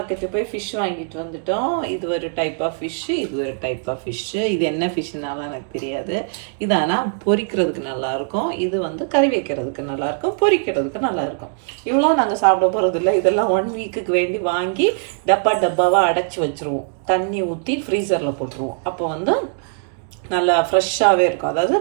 போய் fish வாங்கிட்டு வந்துட்டோம். இது ஒரு டைப் ஆஃப் ஃபிஷ்ஷு, இது ஒரு டைப் ஆஃப் ஃபிஷ்ஷு. இது என்ன ஃபிஷ்ஷுனாலும் எனக்கு தெரியாது. இது ஆனால் பொரிக்கிறதுக்கு நல்லாயிருக்கும், இது வந்து கறி வைக்கிறதுக்கு நல்லாயிருக்கும், பொரிக்கிறதுக்கு நல்லாயிருக்கும். இவ்வளோ நாங்கள் சாப்பிட போகிறதில்ல. இதெல்லாம் 1 வீக்குக்கு வேண்டி வாங்கி டப்பாவாக அடைச்சி வச்சுருவோம். தண்ணி ஊற்றி ஃப்ரீசரில் போட்டுருவோம். அப்போ வந்து நல்லா ஃப்ரெஷ்ஷாகவே இருக்கும். அதாவது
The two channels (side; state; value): left; silent; 65 dB below the other